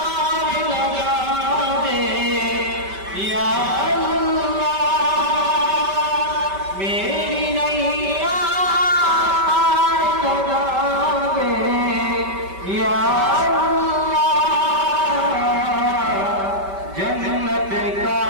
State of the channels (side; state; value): left; late; 5.2 ms